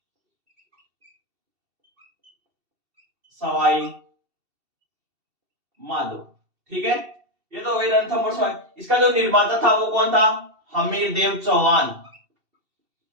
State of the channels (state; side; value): late; left; 2.7 ms